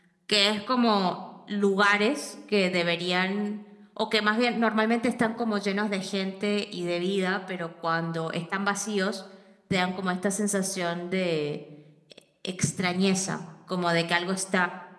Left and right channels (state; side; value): identical; both; correlation 1.00